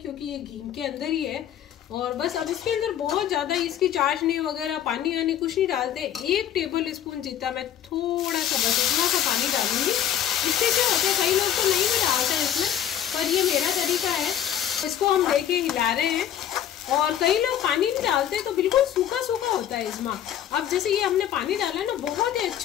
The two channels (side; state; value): right; quieter; 10.3 dB